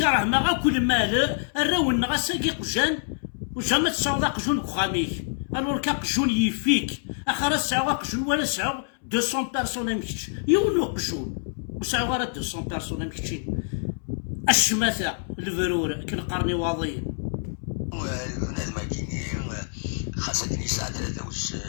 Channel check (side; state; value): right; silent; 61 dB below the other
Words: ما كل مال الراون غاساكي قجان وجا تسعود قجون كخاميك الور كقجون يفيك اخر تسعود قجون ولا تسعود 200 بيرسون مكتش يونو قجون وسعود غير 200 بيرسون مكتشين الشماثه الفرور كنقرني واضيين بنادم كيني خاصك نساعد